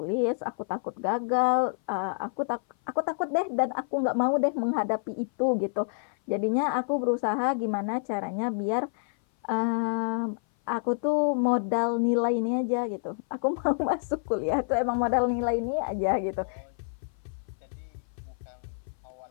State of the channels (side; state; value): right; silent; 56 dB below the other